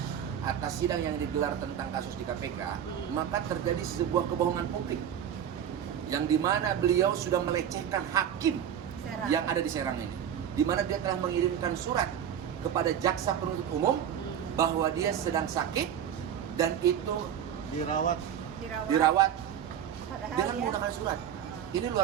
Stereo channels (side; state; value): left; quieter; 9.3 dB